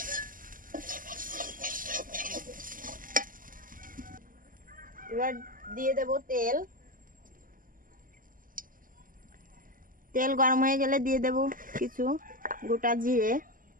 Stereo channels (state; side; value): late; left; 0.40 ms